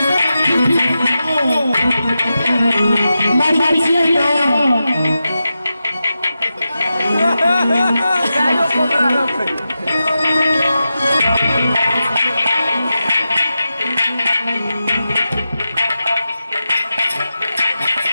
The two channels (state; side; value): inverted; both; correlation -0.91